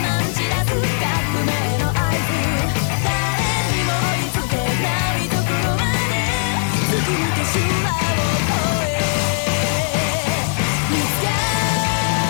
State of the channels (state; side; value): silent; right; 66 dB below the other